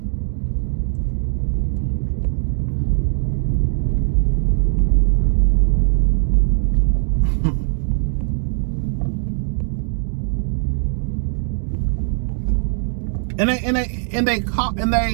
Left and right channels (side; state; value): left; silent; 66 dB below the other